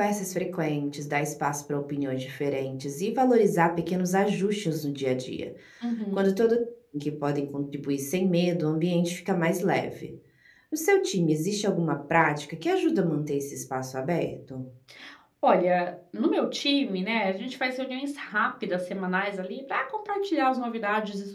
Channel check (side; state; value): both; identical; correlation 1.00